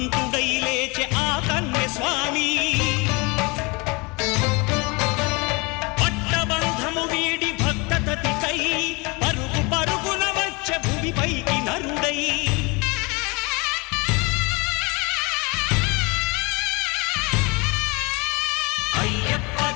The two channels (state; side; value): quieter; right; 27.4 dB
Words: లేచె ఆ కన్య స్వామి పట్టబంధము వీడి భక్తతతికై పరుగు పరుగున వచ్చె భూమిపైకి నరుడై